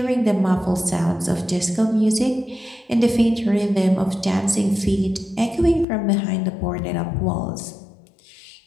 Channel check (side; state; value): right; drops out; at 5.9 s